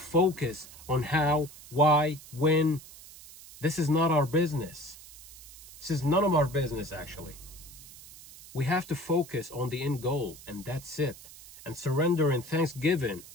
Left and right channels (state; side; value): noise; right; hiss, 18 dB below the sound